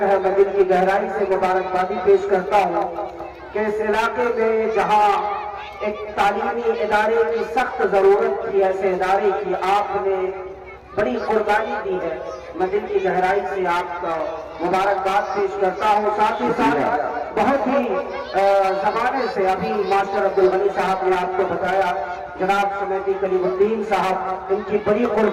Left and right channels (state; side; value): identical; both; correlation 1.00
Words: है। मैं दिल की गहराई से मुबारकबादी पेश करता हूँ कि इस इलाके में जहाँ एक तालीमी इदारे की सख्त जरूरत थी, ऐसे इदारे की आपने बड़ी कुर्बानी दी है। मैं दिल की गहराई से आपका मुबारकबाद पेश करता हूँ। साथ ही साथ बहुत ही जमाने से अभी मास्टर अब्दुल गनी साहब ने आपको बताया, जनाब सुनैती कलीमुद्दीन साहब, इनकी बड़ी